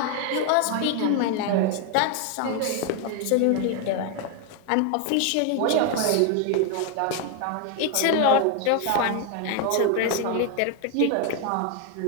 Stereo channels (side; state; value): both; different; correlation 0.01